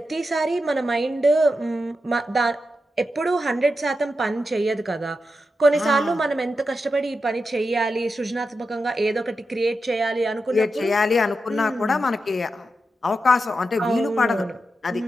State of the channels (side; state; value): both; normal; correlation 0.88